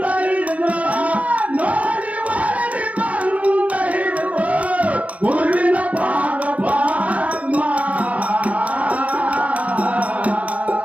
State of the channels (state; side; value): late; left; 0.068 ms